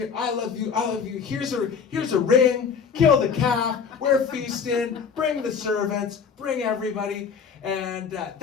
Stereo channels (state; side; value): quieter; right; 6.3 dB